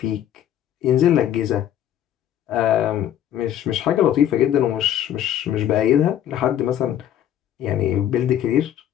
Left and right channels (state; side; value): quieter; right; 10.8 dB